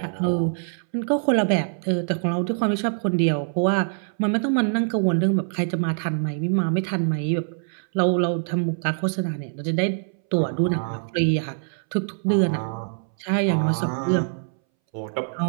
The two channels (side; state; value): left; silent; 62 dB below the other